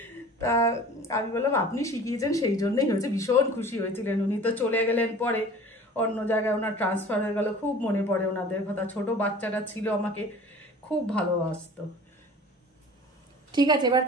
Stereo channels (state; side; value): normal; both; correlation 0.43